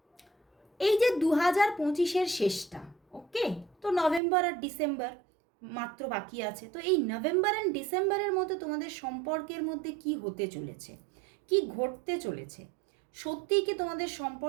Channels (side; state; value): left; drops out; at 4.2 s